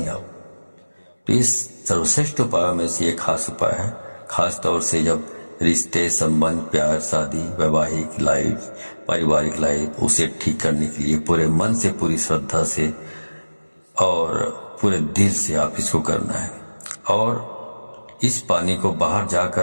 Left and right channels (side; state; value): both; inverted; correlation -1.00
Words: आप। तो इस सर्वश्रेष्ठ उपायों में से एक खास उपाय है, खास तौर से जब रिश्ते, संबंध, प्यार, शादी, वैवाहिक लाइफ, पारिवारिक लाइफ, उसे ठीक करने के लिए पूरे मन से, पूरी श्रद्धा से और पूरे दिल से आप इसको करना है। और इस पानी को बाहर